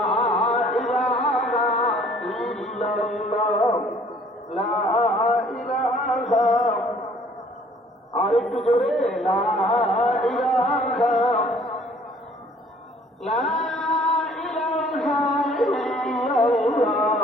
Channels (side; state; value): both; normal; correlation 0.57